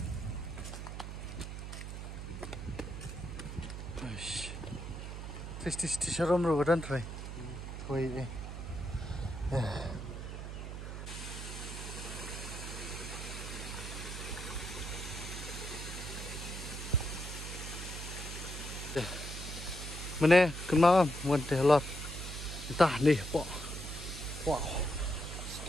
Aish. Tis sharom ro dan try. Koi eh. Mana kena mun teh lot. Entah nih, po. Wow.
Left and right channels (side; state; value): right; noise; hum, 7 dB below the sound